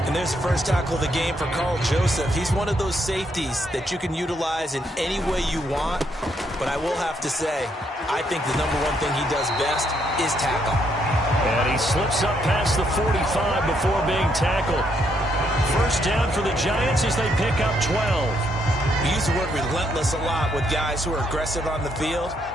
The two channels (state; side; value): normal; both; correlation 0.74